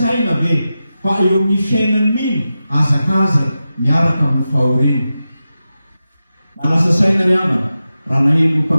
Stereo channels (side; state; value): both; inverted; correlation -0.92